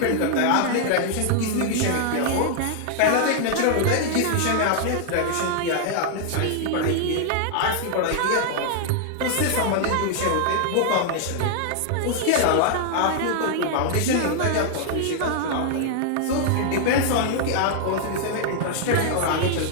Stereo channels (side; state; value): both; different; correlation 0.00